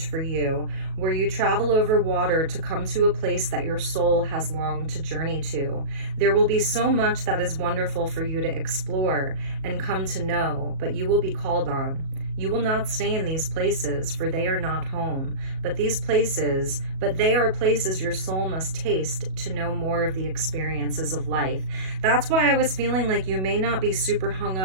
for you, where you travel over water to come to a place that your soul has longed to journey to. There will be so much that is wonderful for you to explore and come to know, but you will be called on. You will not stay in these places, for they are not home, but they are places your soul must taste to know more of the experiences of life. That's why I was feeling like you may not be super hung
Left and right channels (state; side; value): late; left; 37 ms